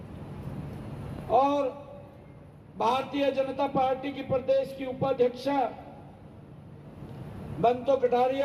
और भारतीय जनता पार्टी की प्रदेश की उपाध्यक्षा बंतो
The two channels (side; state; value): both; identical; correlation 1.00